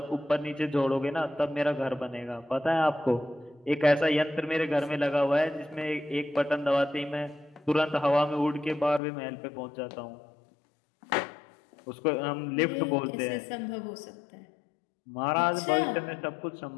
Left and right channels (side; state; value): right; drops out; at 9.0 s